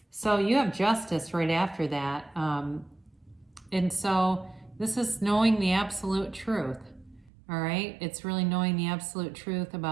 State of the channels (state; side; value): drops out; left; at 7.3 s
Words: So you have justice right after that. And so this is knowing the absolute truth. All right. It's really knowing the absolute truth